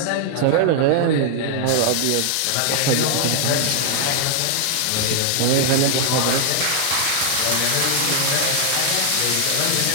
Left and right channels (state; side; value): different; both; correlation 0.00